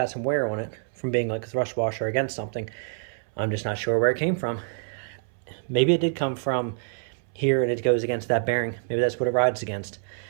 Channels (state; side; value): silent; left; 61 dB below the other